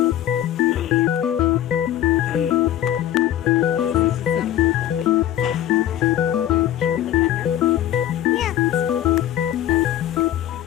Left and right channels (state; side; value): quieter; right; 12.0 dB